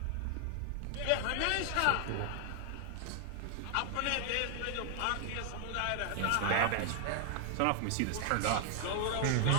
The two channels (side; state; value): both; different; correlation 0.00